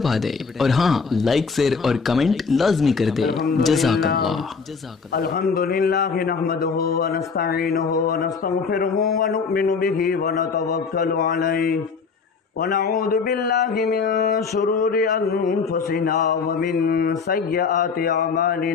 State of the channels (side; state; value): right; quieter; 5.2 dB